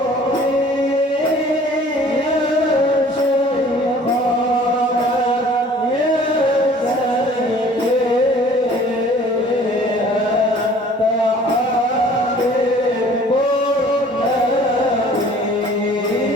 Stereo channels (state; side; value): normal; both; correlation 0.51